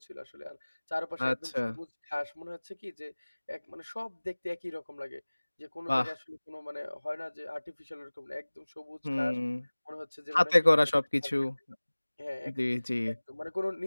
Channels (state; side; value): inverted; both; correlation -1.00